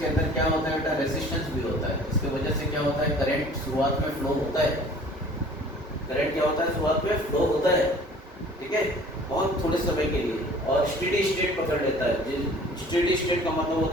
अंदर क्या होता है बेटा, रेजिस्टेंस भी होता है, इसकी वजह से क्या होता है, करंट शुरुआत में फ्लो होता है, करंट क्या होता है, शुरुआत में फ्लो होता है, ठीक है, बहुत थोड़े समय के लिए, और स्टेडी स्टेट पकड़ लेता है। स्टेडी स्टेट का मतलब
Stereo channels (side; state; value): both; normal; correlation 0.49